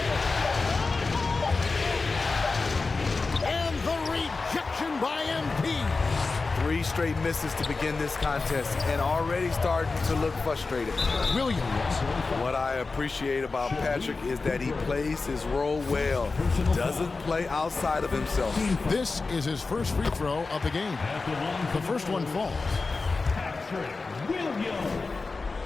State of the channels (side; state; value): right; quieter; 4.0 dB